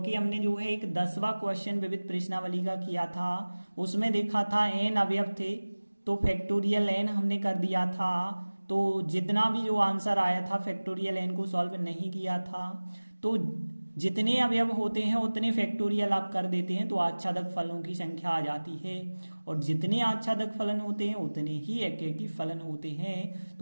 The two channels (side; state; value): both; inverted; correlation -1.00